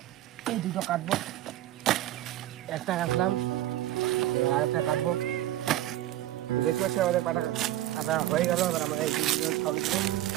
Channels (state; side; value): quieter; left; 14.1 dB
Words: এই দুটো কাটবো, একটা কাটলাম আর একটা কাটবো। দেখতে পাচ্ছি আমাদের কাটা হয়ে গেল। এবার আমরা এই দুটো খাবো,